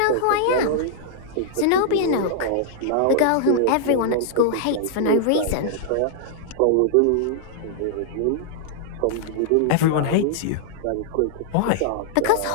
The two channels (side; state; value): both; different; correlation -0.01